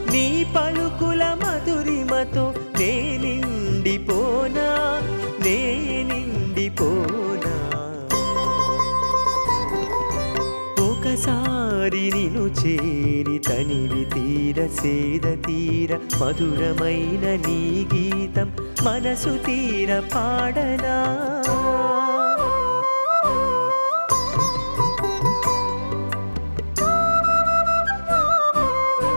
నీ పలుకుల మధురిమతో నే నిండిపోనా నే నిండిపోనా ఒకసారి నిను చేరి తనివి తీర సేద తీర మధురమైన నీ గీతం మనసు తీర పాడనా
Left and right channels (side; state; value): both; inverted; correlation -1.00